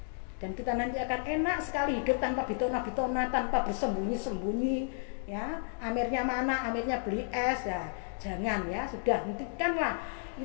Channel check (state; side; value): silent; right; digital silence